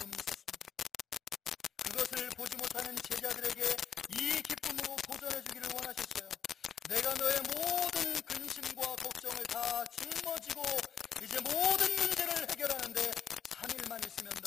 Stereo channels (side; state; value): right; quieter; 8.2 dB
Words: 있었습니다. 그것을 보지 못하는 제자들에게 이 기쁨으로 도전해 주기를 원하셨어요. 내가 너의 모든 근심과 걱정을 다 짊어지고 이제 모든 문제를 해결하는데 3일만 있으면